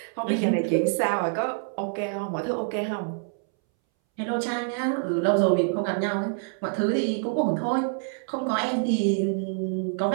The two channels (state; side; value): silent; left; 61 dB below the other